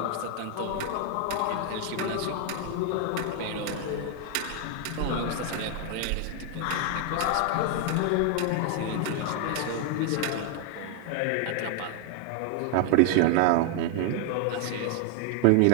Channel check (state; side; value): different; both; correlation 0.00